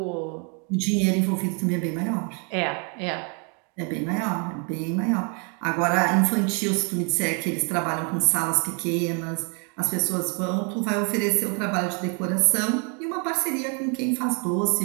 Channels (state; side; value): quieter; left; 36.8 dB